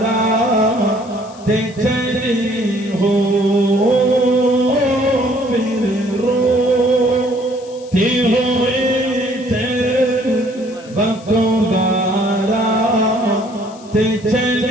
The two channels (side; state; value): left; noise; hiss, 24 dB below the sound